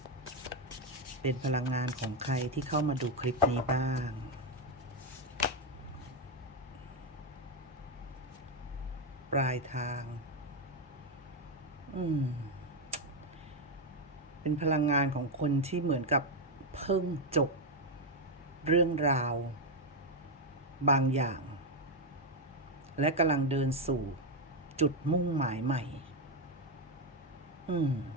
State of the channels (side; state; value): both; normal; correlation 0.04